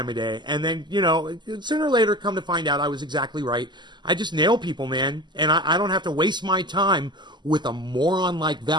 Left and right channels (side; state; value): left; late; 0.21 ms